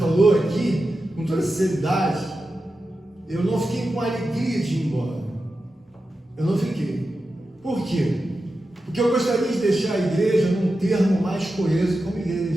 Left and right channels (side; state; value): both; normal; correlation 0.91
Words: aqui, com toda sinceridade, eu não fiquei com a alegria de ir embora. Eu não fiquei. Por quê? Porque eu gostaria de deixar a igreja num termo mais coeso como